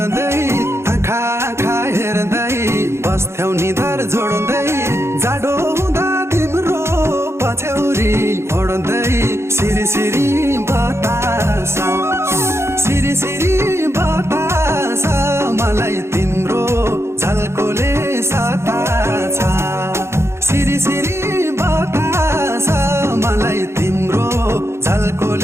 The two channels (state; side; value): late; left; 0.13 ms